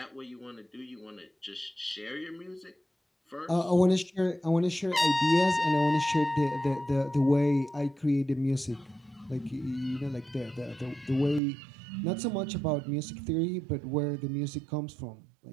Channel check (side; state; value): left; drops out; at 11.4 s